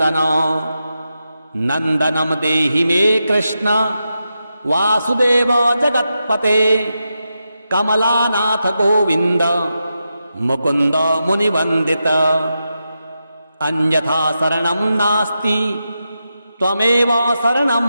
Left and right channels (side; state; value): both; inverted; correlation -0.88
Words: नन्दनं देहि मे कृष्ण वासुदेव जगत्पते कमलानाथ गोविन्द मुकुन्द मुनिवन्दित। अन्यथा शरणं नास्ति त्वमेव शरणं